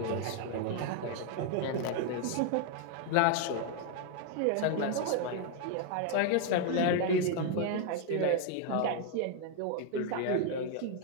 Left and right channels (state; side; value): different; both; correlation 0.00